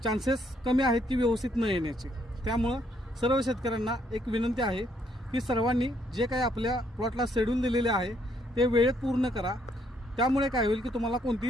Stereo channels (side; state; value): both; normal; correlation 0.70